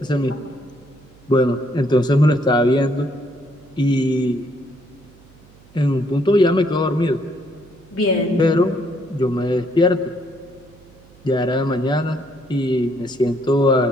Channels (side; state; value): right; noise; hum, 26 dB below the sound